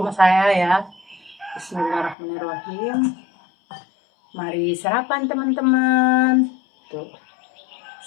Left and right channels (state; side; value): drops out; right; at 2.1 s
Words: saya ya. Bismillahirrahmanirrahim. Mari sarapan teman-teman. Tuh.